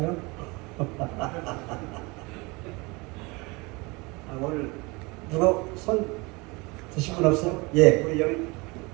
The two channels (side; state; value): left; quieter; 25.9 dB